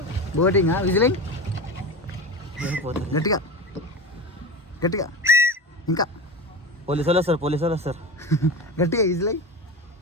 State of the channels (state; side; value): normal; both; correlation 0.27